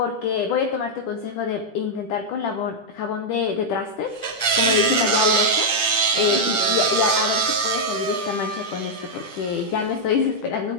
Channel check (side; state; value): right; late; 10 ms